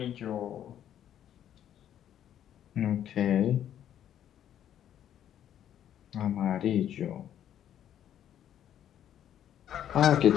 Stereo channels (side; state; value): right; quieter; 10.5 dB